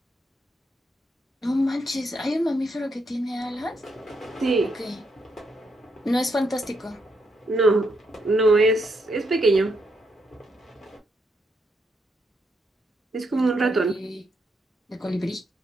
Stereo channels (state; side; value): normal; both; correlation 0.78